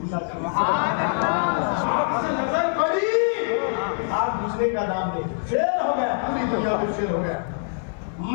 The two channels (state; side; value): silent; right; digital silence